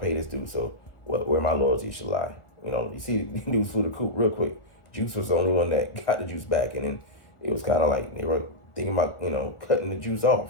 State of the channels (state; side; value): late; right; 1.4 ms